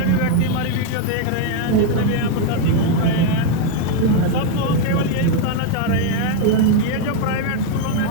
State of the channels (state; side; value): different; both; correlation 0.01